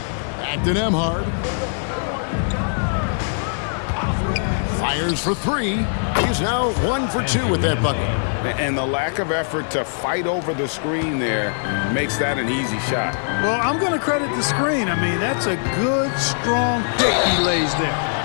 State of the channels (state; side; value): silent; right; 65 dB below the other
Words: Back to Nembhard. Fires for 3. He's now 1 for 2 with that bucket. And the lack of effort to fight over the screen there makes that an easy shot. Well, I'm going to credit the screen. I mean, that's a good, strong pick he lays there.